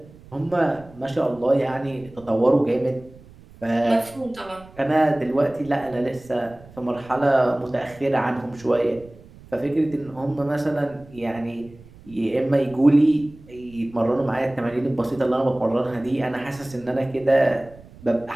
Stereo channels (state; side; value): noise; right; rumble, 22 dB below the sound